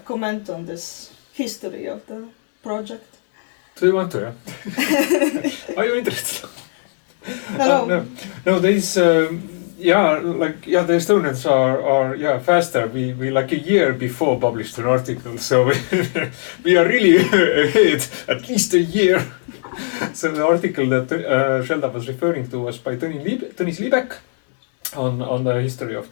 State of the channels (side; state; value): right; silent; 67 dB below the other